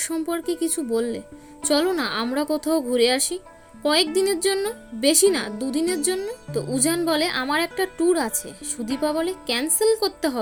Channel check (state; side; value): identical; both; correlation 1.00